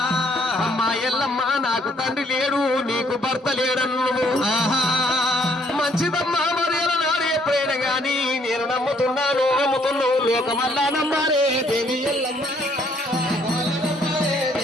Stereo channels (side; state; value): both; normal; correlation 0.66